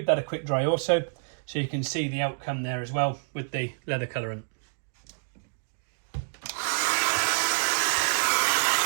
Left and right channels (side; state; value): left; silent; digital silence